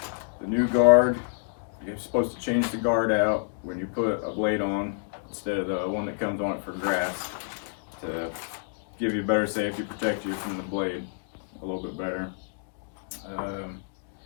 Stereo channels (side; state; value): right; silent; digital silence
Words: the new guard. You're supposed to change the guard out when you put a blade on instead of the one that comes on it for grass, to give you better safety, protect you from the blade a little bit better.